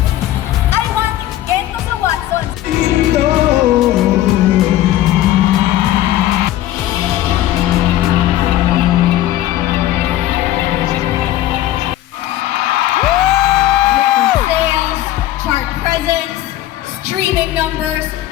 I want Gento sa Watsons! Sales, chart presence, streaming numbers,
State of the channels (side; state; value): right; quieter; 13.9 dB